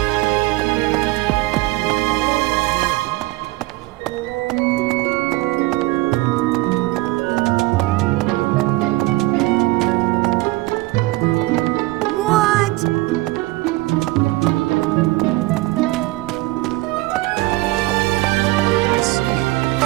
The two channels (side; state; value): left; quieter; 20.6 dB